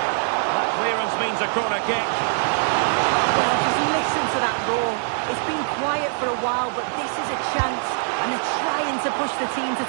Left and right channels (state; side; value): silent; left; 63 dB below the other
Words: That clearance means a corner kick. Well, just listen to that roar. It's been quiet for a while, but this is a chance, and they're trying to push the team to